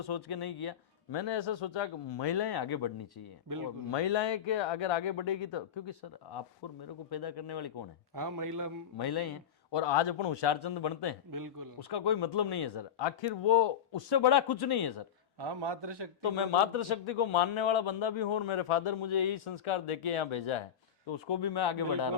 सोच के नहीं किया। मैंने ऐसा सोचा कि महिलाएं आगे बढ़नी चाहिए, और महिलाएं के अगर आगे बढ़ेगी तो, क्योंकि सर आपको और मेरे को पैदा करने वाली कौन है? हाँ, महिलाएं हैं। और आज अपन होशियारचंद बनते हैं, बिल्कुल। उसका कोई मतलब नहीं है सर, आखिर वो उससे बड़ा कुछ नहीं है सर। हाँ, मातृशक्ति। तो मैं मातृशक्ति को मानने वाला बंदा भी हूँ, और मेरे फादर मुझे यही संस्कार देके यहाँ भेजा है, तो उसको भी मैं आगे बढ़ा रहा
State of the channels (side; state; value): right; quieter; 9.0 dB